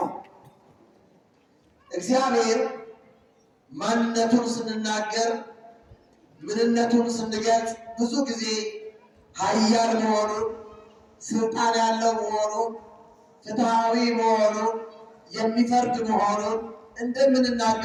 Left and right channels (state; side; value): identical; both; correlation 1.00